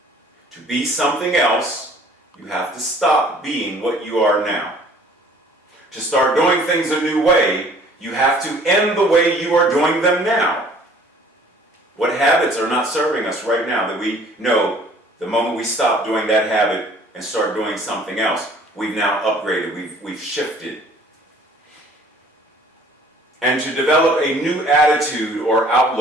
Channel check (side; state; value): both; normal; correlation 0.54